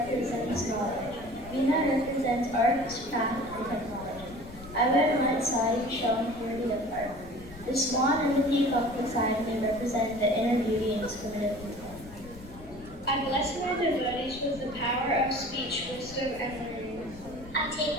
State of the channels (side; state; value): left; noise; rumble, 17 dB below the sound